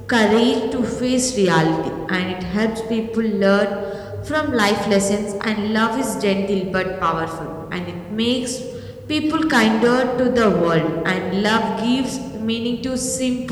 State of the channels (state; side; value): identical; both; correlation 1.00